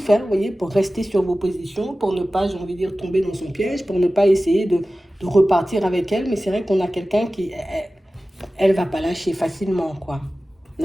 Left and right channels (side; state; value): both; normal; correlation 0.96